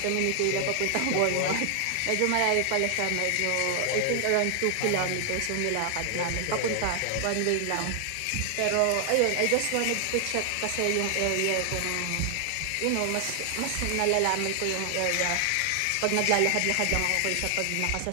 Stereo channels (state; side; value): different; both; correlation 0.00